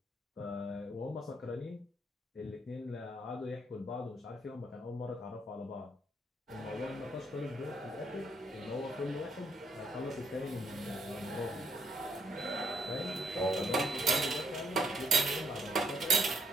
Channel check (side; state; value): both; normal; correlation 0.72